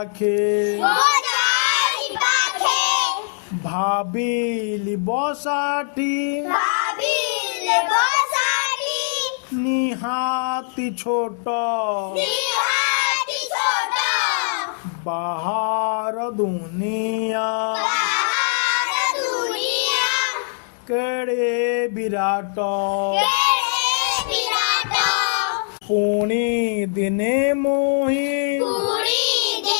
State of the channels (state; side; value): silent; right; digital silence